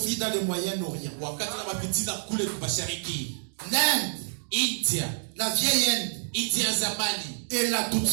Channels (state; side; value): silent; left; digital silence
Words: dans le Moyen-Orient, wakati na mapitina kule mashariki, l'Inde, India, la vieille Inde, India ya zamani elle a toutes